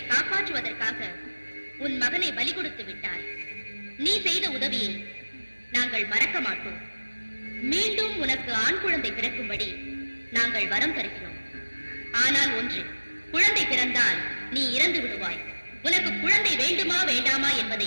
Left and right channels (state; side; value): inverted; both; correlation -1.00